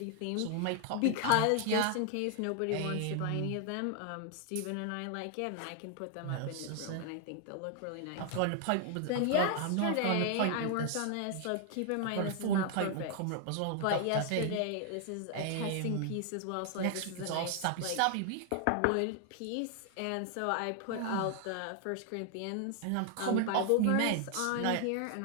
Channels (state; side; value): different; both; correlation 0.00